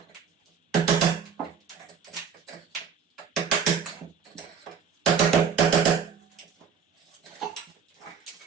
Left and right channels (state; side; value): quieter; left; 6.7 dB